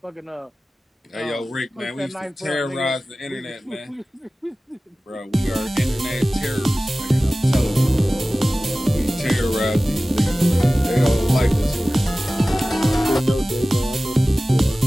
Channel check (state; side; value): normal; both; correlation 0.97